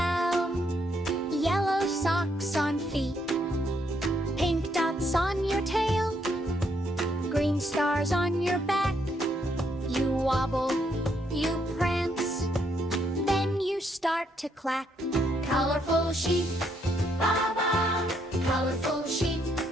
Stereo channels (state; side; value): normal; both; correlation 0.73